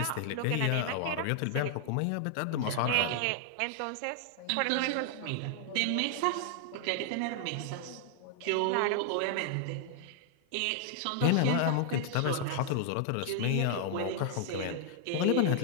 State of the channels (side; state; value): both; different; correlation 0.00